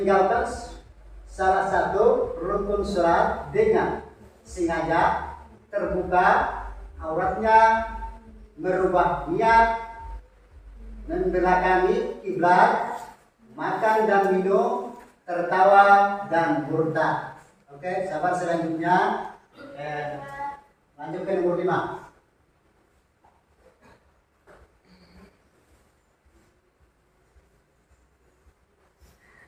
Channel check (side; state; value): both; identical; correlation 1.00